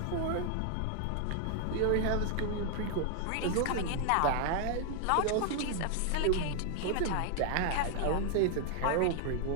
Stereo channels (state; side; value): different; both; correlation 0.00